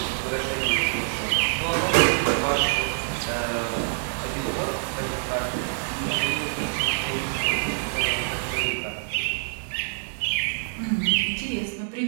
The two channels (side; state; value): left; silent; digital silence